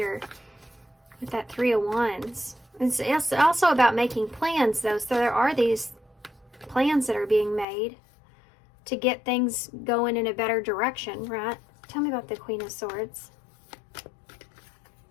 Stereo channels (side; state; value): right; drops out; at 7.7 s